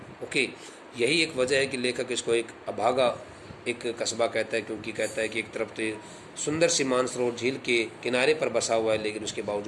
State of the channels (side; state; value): both; identical; correlation 1.00